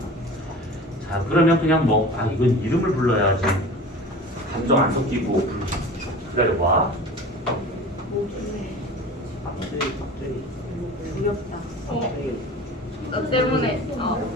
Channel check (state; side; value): normal; both; correlation 0.38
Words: 자, 그러면 그냥 이건 이름을 불러야지. 감정 안 섞이고 기다려봐. 두렵다. 너 때문에.